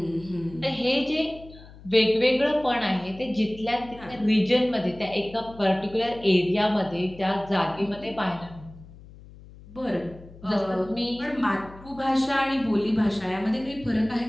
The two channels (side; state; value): left; noise; hum, 20 dB below the sound